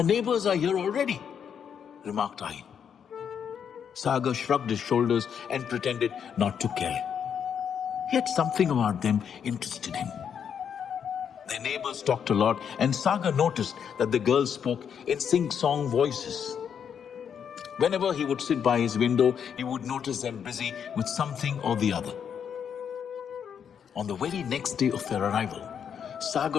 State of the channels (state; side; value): quieter; right; 7.8 dB